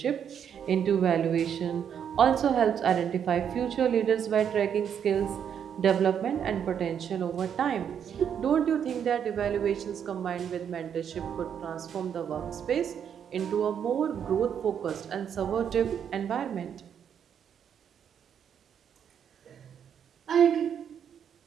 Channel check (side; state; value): left; quieter; 8.3 dB